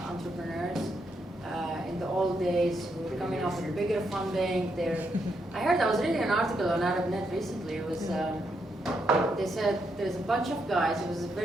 entrepreneurs in the old days who were coming up with bigger funding. I was reading an article on ArabNet recently. It was, they said there's a bunch of guys, it was a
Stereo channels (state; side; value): normal; both; correlation 0.80